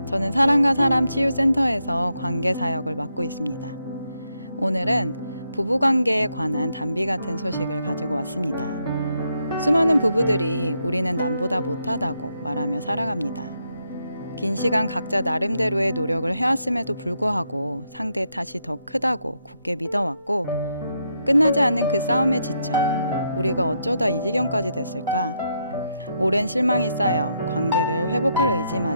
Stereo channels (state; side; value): inverted; both; correlation -0.79